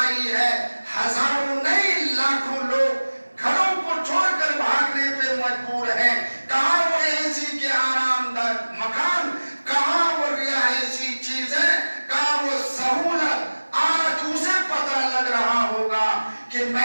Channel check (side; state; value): both; inverted; correlation -1.00